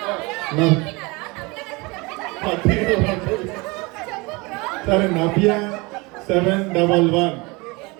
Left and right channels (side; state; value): left; quieter; 25.7 dB